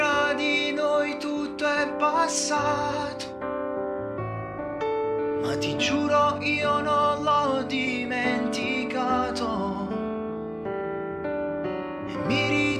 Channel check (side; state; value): both; identical; correlation 1.00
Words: di noi tutto è passato, ma ti giuro io non l'ho dimenticato. E mi